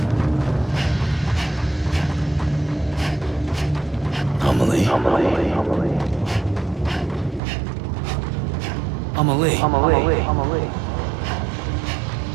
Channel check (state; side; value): drops out; left; at 7.4 s